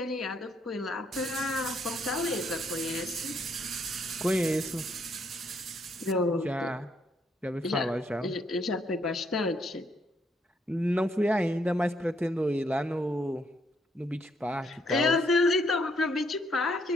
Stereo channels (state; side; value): normal; both; correlation 0.72